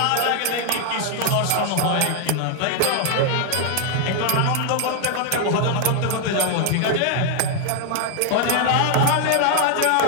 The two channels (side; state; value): both; different; correlation 0.00